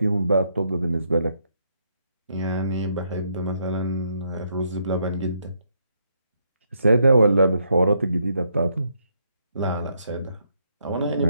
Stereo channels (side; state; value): both; inverted; correlation -0.75